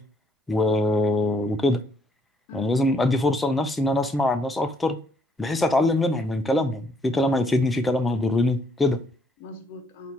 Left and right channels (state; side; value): normal; both; correlation 0.69